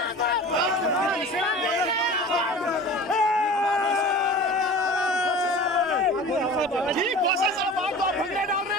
जी खोसा साहब आप तो भंगड़े डाल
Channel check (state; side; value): normal; both; correlation 0.38